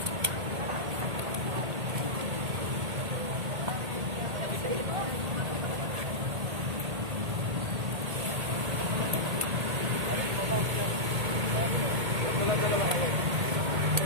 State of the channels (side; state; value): left; late; 1.8 ms